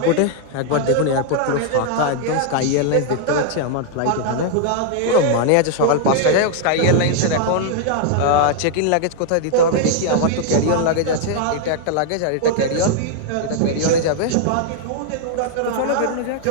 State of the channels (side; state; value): both; different; correlation 0.00